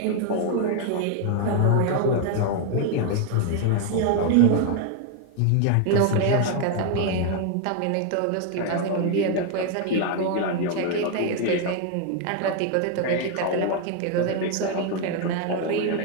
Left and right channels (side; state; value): both; different; correlation 0.01